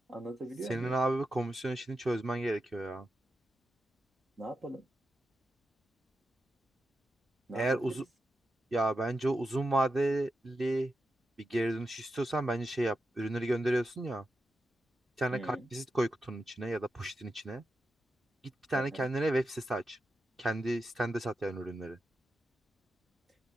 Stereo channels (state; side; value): normal; both; correlation 0.88